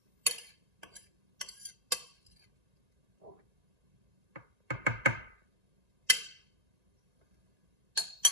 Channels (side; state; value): left; late; 1.9 ms